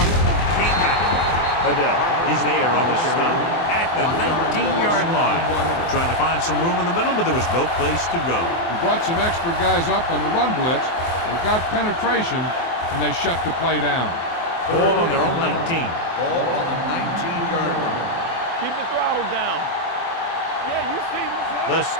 Can't wrap it. Adele is there on the stop at the 19-yard line. Trying to find some room in the middle, but there was no place to go. He brought some extra guys up on the run blitz. They got penetration, and they shut the play down. Ball on their own 19. Ball on the 19-yard line. Keep the throttle down. Yeah, you see this. The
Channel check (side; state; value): right; late; 24 ms